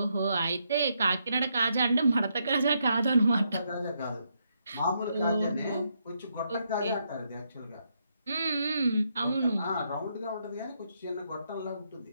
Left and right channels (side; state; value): both; inverted; correlation -0.78